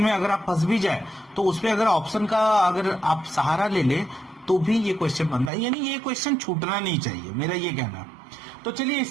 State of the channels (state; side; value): drops out; left; at 5.5 s